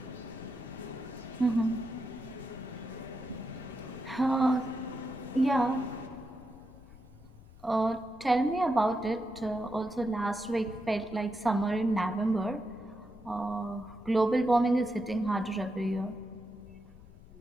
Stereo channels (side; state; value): left; noise; rumble, 20 dB below the sound